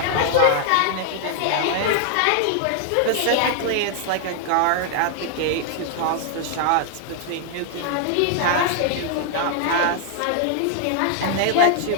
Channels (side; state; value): both; different; correlation 0.00